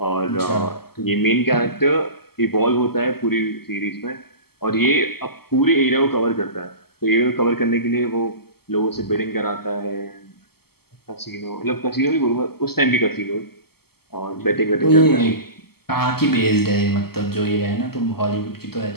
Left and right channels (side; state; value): right; late; 0.96 ms